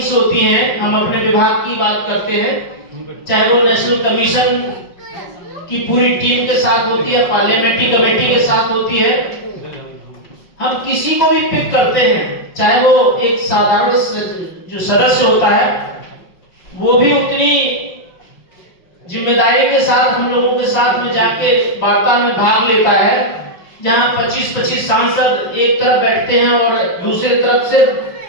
होती हैं, हम अपने विभाग की बात करते हैं, चाहे वो नेशनल कमीशन की पूरी टीम के साथ होती है, पार्लियामेंट्री कमेटी के साथ होती है, हम किसी को भी पिक करते हैं, चाहे वो एक साधारण जो सदस्य होता है वो भी उतनी जिम्मेदारी के साथ हम लोगों के साथ में जाके वार्ता में भाग लेता है, जहां 25-25 सांसद एक तरफ बैठते हैं और दूसरी तरफ से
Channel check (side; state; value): right; late; 5.5 ms